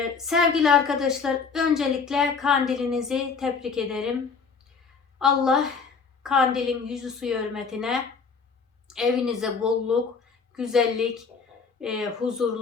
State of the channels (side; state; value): right; quieter; 5.3 dB